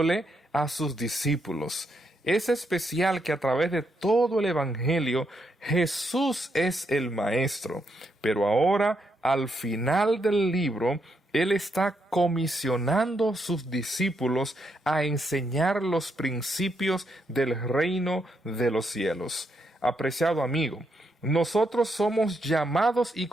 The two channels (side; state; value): both; normal; correlation 0.79